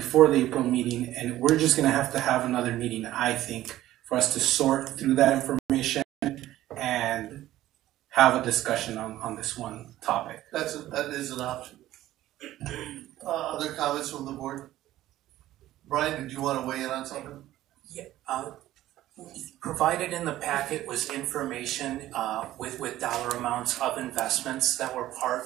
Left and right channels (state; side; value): quieter; left; 14.5 dB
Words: the April meeting, and we're just going to have another meeting, I think, for us to sort through that information and have a discussion on this one topic. That is an option. Other comments from the board? Brian, did you want to weigh in on something? Yeah. Provided in the packet was information with dollar amounts of investments that were part